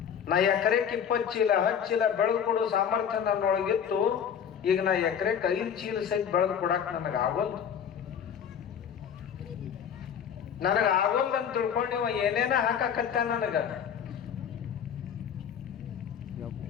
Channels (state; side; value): quieter; right; 8.1 dB